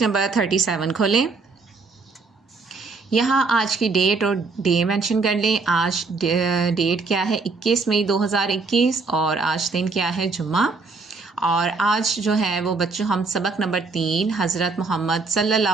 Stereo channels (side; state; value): left; quieter; 4.1 dB